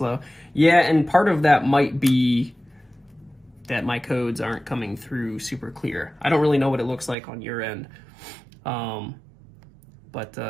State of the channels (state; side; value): drops out; left; at 7.2 s